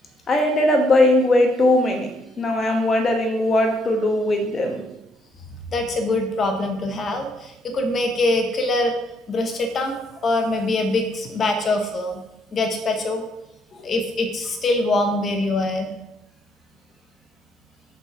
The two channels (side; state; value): both; normal; correlation 0.71